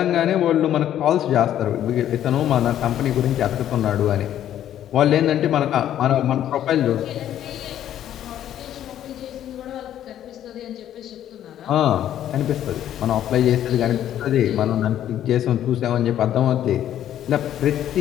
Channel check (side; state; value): right; quieter; 11.3 dB